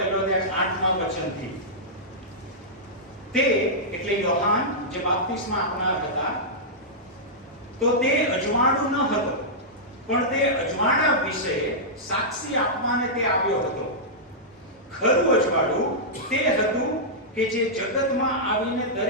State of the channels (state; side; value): normal; both; correlation -0.11